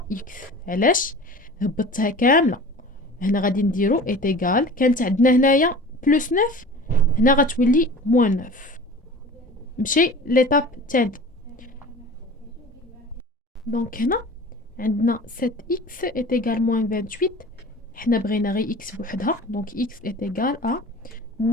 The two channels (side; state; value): both; normal; correlation 0.40